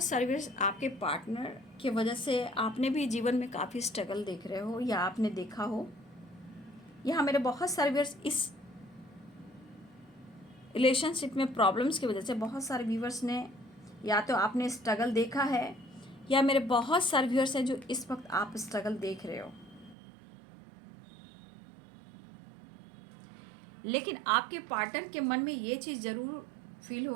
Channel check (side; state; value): left; drops out; at 20.0 s